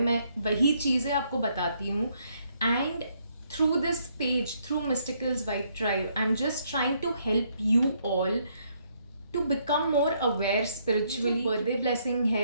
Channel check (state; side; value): inverted; both; correlation -0.71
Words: मैं वही चीज़ें आपको बताती हूँ. And through this page, through Mysticals Vibe Tribe, I'm just trying to help you all to become more aware spiritually. Birthday blessing